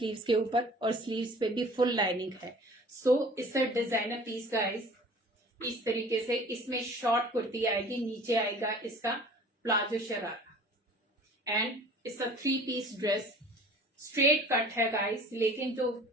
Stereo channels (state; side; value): normal; both; correlation 0.46